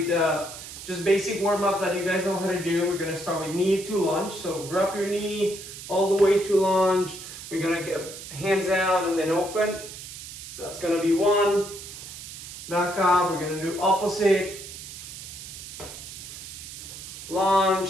just basic warm up that you guys know how to do. We're gonna start with knee to lunge. So grab your knee all the way to lunge. We're gonna get hands out and then open. That's gonna be one. Back up. We're gonna do opposite.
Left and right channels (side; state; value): right; noise; hiss, 12 dB below the sound